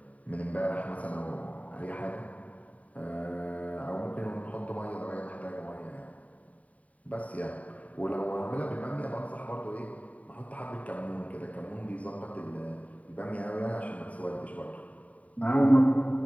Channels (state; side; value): late; right; 0.069 ms